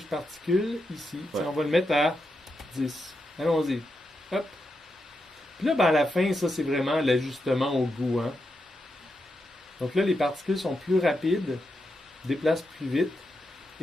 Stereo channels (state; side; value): normal; both; correlation 0.86